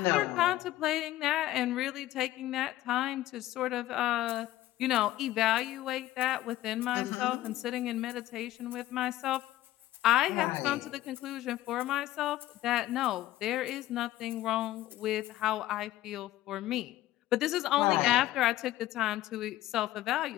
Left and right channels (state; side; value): quieter; right; 15.1 dB